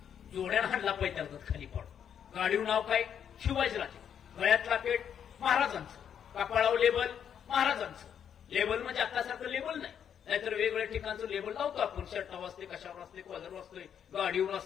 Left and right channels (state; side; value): quieter; right; 8.5 dB